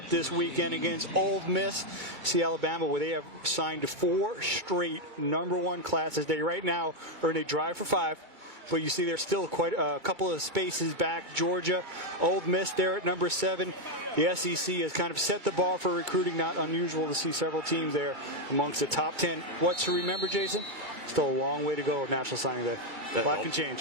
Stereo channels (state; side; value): late; left; 2.2 ms